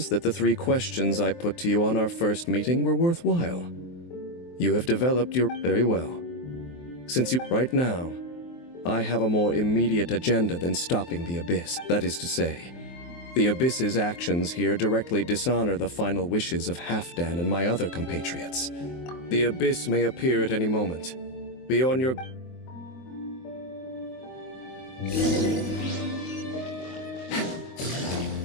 that the 3 questions I put to you on our first meeting were worthwhile. You have developed your... Very well. Since you... Right now, I have a more immediate agenda than stopping the Abyss. That is to say, the Abyss's actions here directly dishonor the final wishes of Halfdan and my other compatriots. The Abyss may appear at any moment. Be on your...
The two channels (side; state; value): right; late; 23 ms